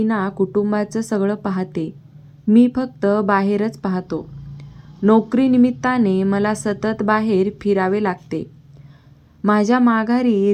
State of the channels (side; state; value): both; identical; correlation 1.00